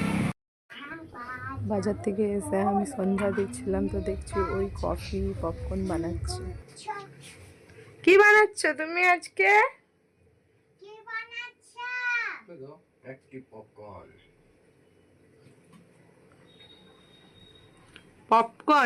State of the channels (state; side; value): identical; both; correlation 1.00